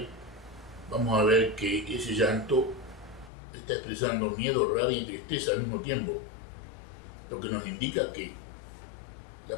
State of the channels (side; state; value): right; drops out; at 3.3 s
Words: vamos a ver que ese llanto está expresando miedo, rabia y tristeza al mismo tiempo, lo que nos indica que